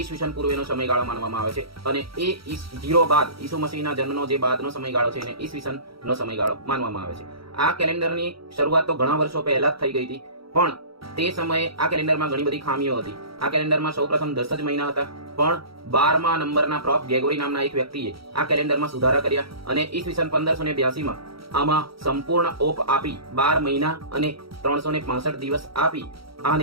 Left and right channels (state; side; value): late; left; 0.75 ms